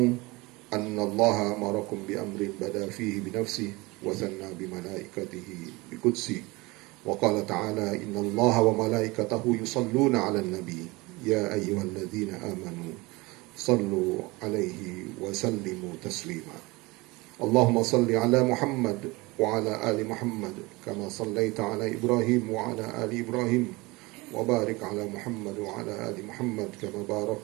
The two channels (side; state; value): left; quieter; 23.4 dB